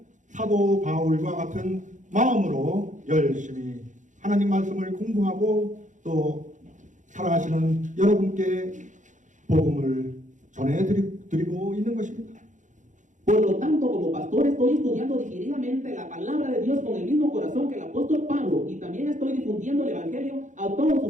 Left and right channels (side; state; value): left; late; 0.36 ms